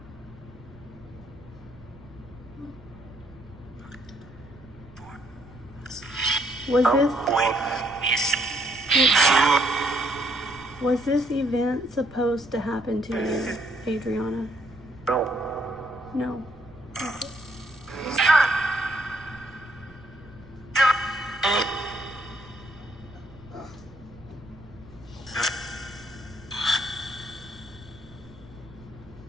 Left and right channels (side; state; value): right; noise; rumble, 21 dB below the sound